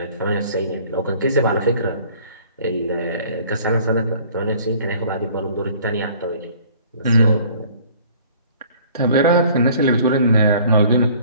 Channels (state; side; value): inverted; both; correlation -0.53